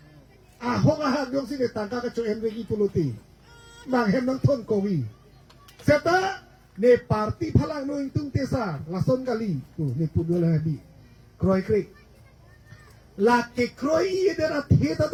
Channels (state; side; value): identical; both; correlation 1.00